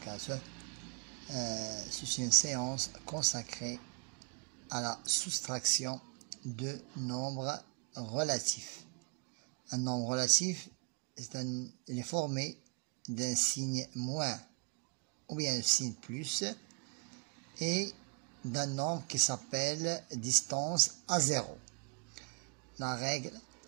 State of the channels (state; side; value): quieter; left; 36.8 dB